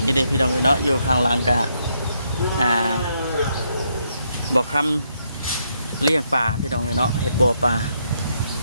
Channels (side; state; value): both; inverted; correlation -0.77